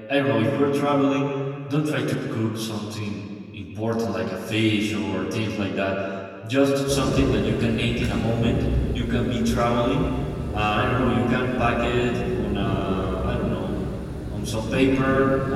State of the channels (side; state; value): both; identical; correlation 1.00